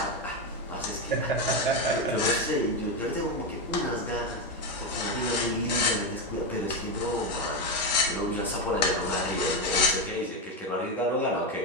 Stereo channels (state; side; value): normal; both; correlation 0.10